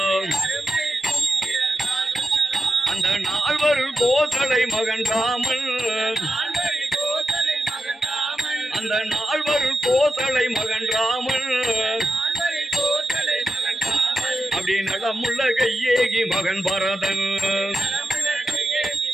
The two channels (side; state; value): both; normal; correlation 0.88